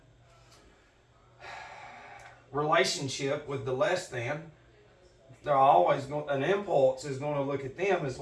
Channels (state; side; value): identical; both; correlation 1.00